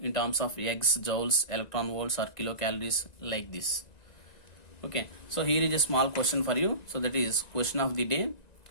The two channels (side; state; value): right; late; 1.9 ms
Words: in terms of ergs, joules, electron volts or kilocalories like this. Okay, so here is a small question for you. So that is question of the day.